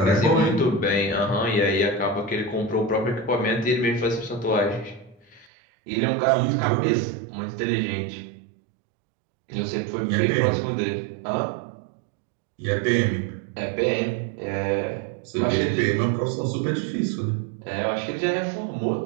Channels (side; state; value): left; drops out; at 5.5 s